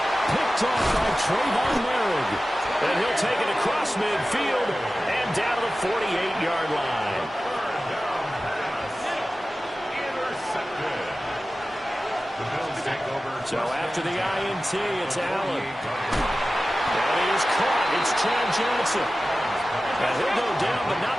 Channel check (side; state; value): both; normal; correlation 0.95